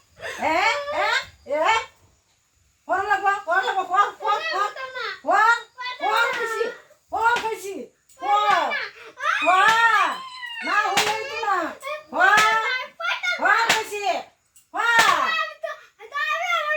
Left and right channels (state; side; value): identical; both; correlation 1.00